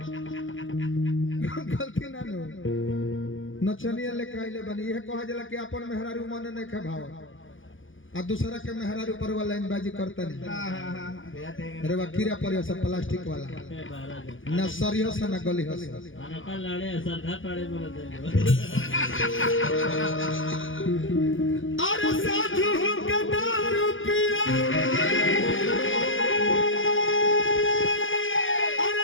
गलती ना नु नचनिया लेके आइले बनी यह कहा जला कि अपन मेहरारू मन नहीं खे भाव आ दूसरा के मेहरारू पर वाला लाइन बाजी करता नहीं जाते अरे वा कीड़ा पड़े सब प्लास्टिक वाला ना सरियो से ना गली हस अनका लाड़े सरधा पड़े बोल दे अरे साधु के दारू पिया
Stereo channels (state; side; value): late; right; 0.57 ms